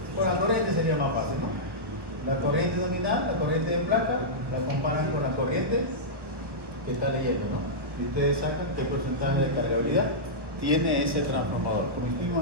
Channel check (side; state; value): left; late; 1.1 ms